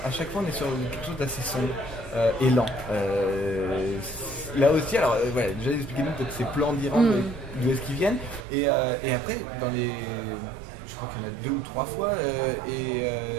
à chaque fois on est sur quelque chose d'assez sombre et lent. Là aussi, alors déjà expliquez-nous peut-être ces plans d'Iran, d'où est-ce qu'ils viennent. Et après, je crois qu'il y en a 2 ou 3 fois,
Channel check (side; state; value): left; drops out; at 8.5 s